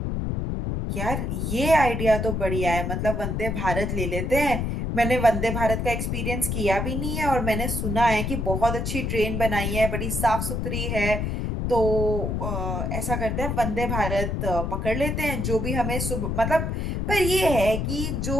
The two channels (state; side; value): noise; left; rumble, 1 dB below the sound